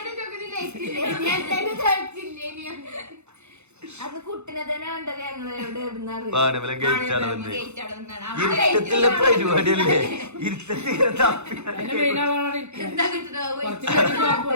അത് കുട്ടിനെ തന്നെ കണ്ടത് ഞങ്ങള് ഇരുട്ടത്തിലെ പരിപാടിയല്ലേ. ഇരുട്ടത്തിങ്ങനെ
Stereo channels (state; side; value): late; left; 0.81 ms